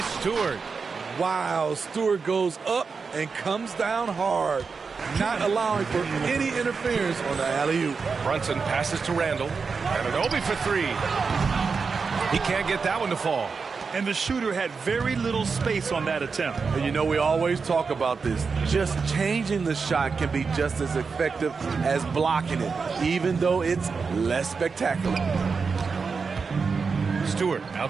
Stewart. Wow, Stewart goes up and comes down hard, not allowing for any interference on the alley-oop. Brunson passes to Randall. And an Obi for 3. He can't get that one to fall. And the shooter had very little space on that attempt. And you know, we always talk about this. Just changing the shot can be just as effective as blocking it, even though it's less spectacular. Stewart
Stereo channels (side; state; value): left; quieter; 5.1 dB